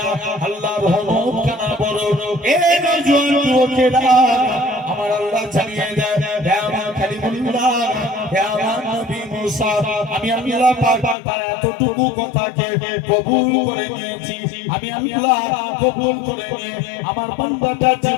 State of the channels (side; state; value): right; drops out; at 11.2 s